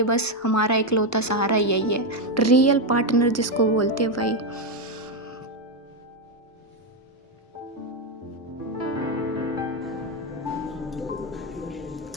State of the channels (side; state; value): both; normal; correlation 0.05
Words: बस हमारा इकलौता सहारा यही है, रियल पार्टनर जिसको बोलते हैं भाई।